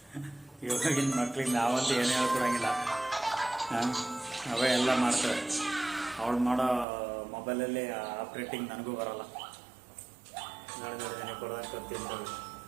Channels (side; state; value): left; drops out; at 6.9 s